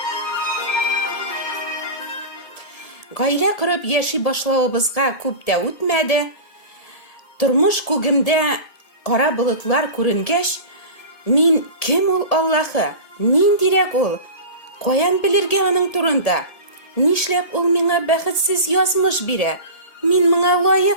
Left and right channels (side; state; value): right; late; 1.8 ms